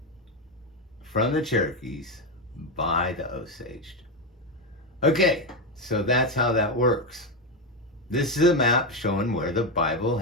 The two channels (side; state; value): both; normal; correlation 0.10